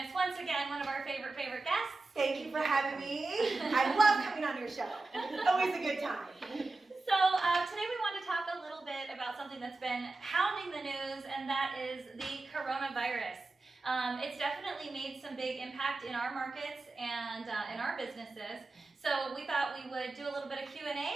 once again, one of our favorite guests. Thank you for having me. I love coming on your show. Always a good time. So today we want to talk a little bit about something that's been hounding the news, and that is the coronavirus. It's definitely made some big impact in our markets and in our businesses. So we thought we would do a little bit of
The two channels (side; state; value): left; quieter; 3.4 dB